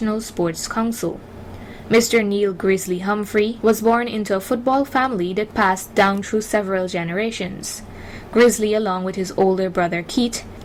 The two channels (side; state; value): both; identical; correlation 1.00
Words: Sports Council. Mr. Neil Grizzly Humphrey was born into a football family that passed down through several generations. Grizzly, along with his older brother Keith